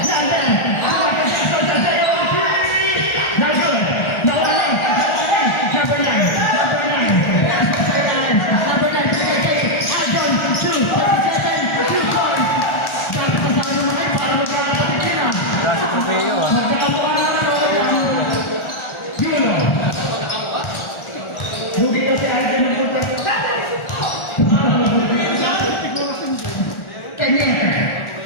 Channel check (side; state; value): right; late; 1.4 ms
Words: London. Michael Jackson. On 3. No good. Nawali. Number 9. Number 9. Number 9. Albon. 2. 7. 2 points. Dapat kasama naman para magkakaroon na. Dasi trofeo ah. Lugi kasi ay ng punta.